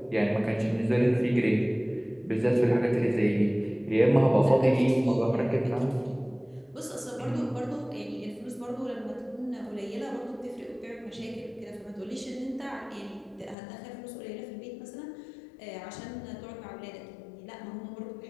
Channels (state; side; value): drops out; right; at 13.6 s